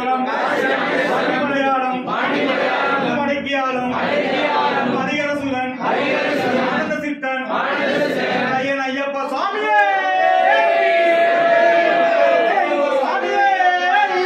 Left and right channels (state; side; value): identical; both; correlation 1.00